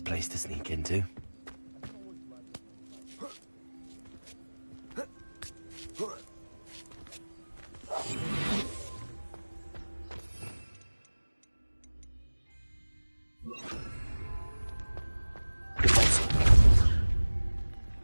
place to sneak into.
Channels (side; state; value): both; inverted; correlation -1.00